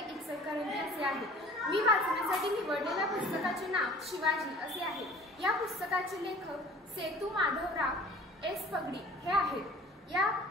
इचलकरंजी असे आहे। मी वाचण्यासाठी निवडलेल्या पुस्तकाचे नाव शिवाजी असे आहे। या पुस्तकाचे लेखक सेतू माधवराव एस पगडी हे आहेत। या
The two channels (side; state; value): both; normal; correlation 0.46